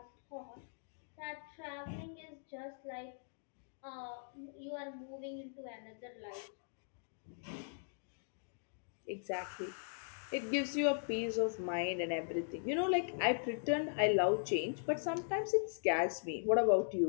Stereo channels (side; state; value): right; silent; digital silence